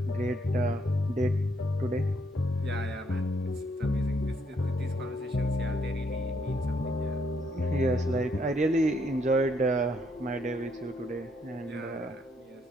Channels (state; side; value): normal; both; correlation 0.72